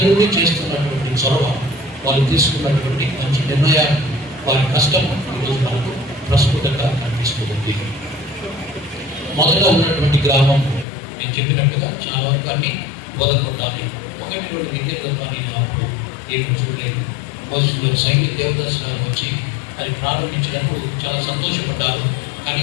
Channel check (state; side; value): drops out; right; at 10.9 s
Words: చేస్తున్నటువంటి చొరవ, వాళ్ళు తీసుకున్నటువంటి మంచి నిర్ణయాలు, వారి కష్టం ఈరోజు మనకు ప్రస్ఫుటంగా కనిపిస్తుంది. మొదట ఉన్నటువంటి గ్రామం నేను చెప్పినట్టుగా చాలా వరకు అన్ని బోధపడాలి. 1-2 విద్యలు పని అప్పుడు ఏమి చూడలేదు. మొదటి సైనిక దేవదర్శనం వచ్చి అది ప్రారంభించినప్పుడు చాలా సంతోషపడ్డారు.